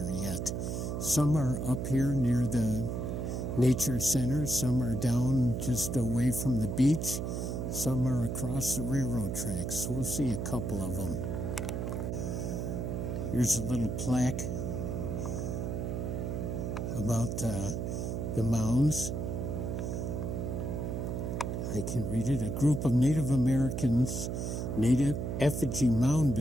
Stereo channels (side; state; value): right; noise; hum, 2 dB below the sound